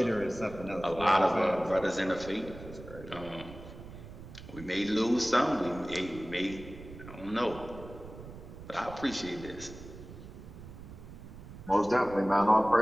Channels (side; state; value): right; noise; rumble, 14 dB below the sound